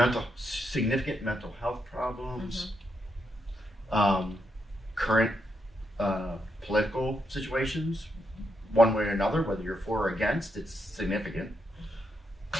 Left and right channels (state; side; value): normal; both; correlation 0.81